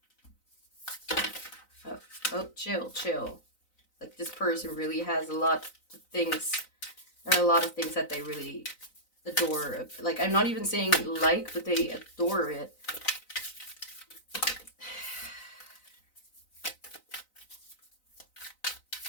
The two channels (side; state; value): right; late; 4.0 ms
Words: Oh, chill. Like, this person really has a lot of things. There are a lot of things that they really adore. Like, I'm not even saying like, but they adore it.